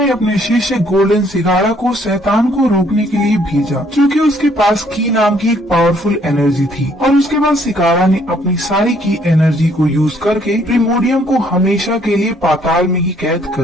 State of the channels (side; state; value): both; normal; correlation 0.65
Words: अपने शिष्य गोल्डन सिगाड़ा को शैतान को रोकने के लिए भेजा, क्योंकि उसके पास की नाम की एक पावरफुल एनर्जी थी। और उसके बाद सिगाड़ा ने अपनी सारी की एनर्जी को यूज करके प्रिमोडियम को हमेशा के लिए पाताल में ही कैद